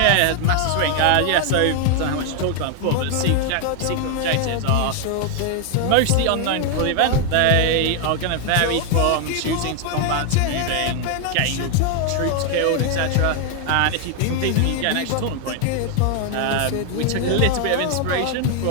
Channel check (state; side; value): different; both; correlation 0.00